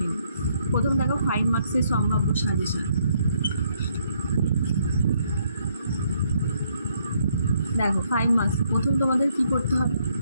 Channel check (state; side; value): inverted; both; correlation -0.71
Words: নিন। প্রথম দেখো 5 মার্কসের সম্ভাব্য সাজেশান। দেখো 5 মার্কস, প্রথম তোমাদের কি করতে হবে,